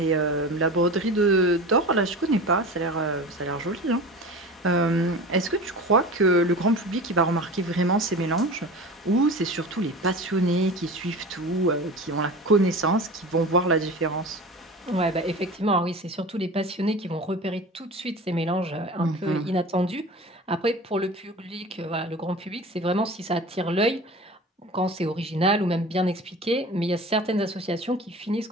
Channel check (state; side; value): normal; both; correlation 0.34